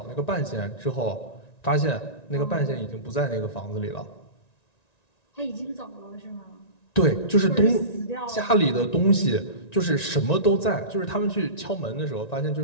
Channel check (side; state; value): right; late; 1.9 ms